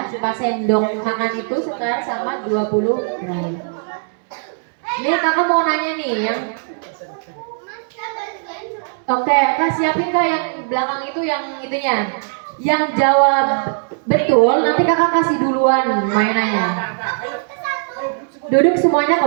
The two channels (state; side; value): silent; left; digital silence